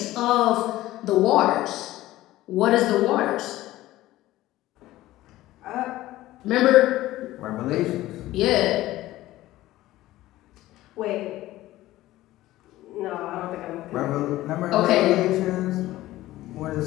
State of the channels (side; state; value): right; quieter; 16.1 dB